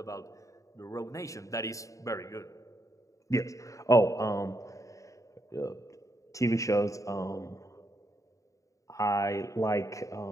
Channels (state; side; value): late; right; 0.16 ms